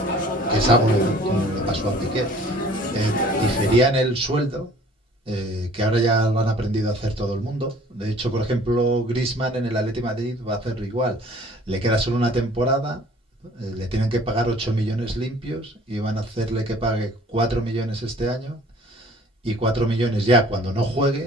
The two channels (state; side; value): normal; both; correlation 0.52